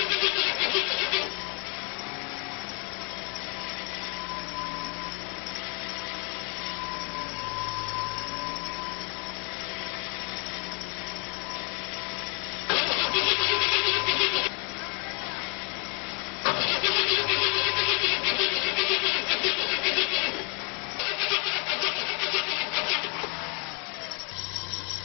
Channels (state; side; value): quieter; right; 31.8 dB